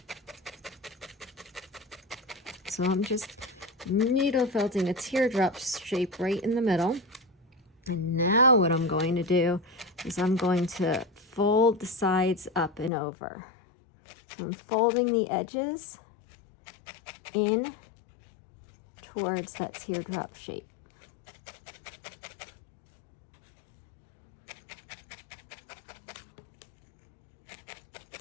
So I'm just needle felting a teardrop shape right in the middle. And now what I'm going to do is I'm going to fold the sides up and over. So I'm folding the edges in towards that teardrop shape.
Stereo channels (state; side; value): drops out; right; at 12.9 s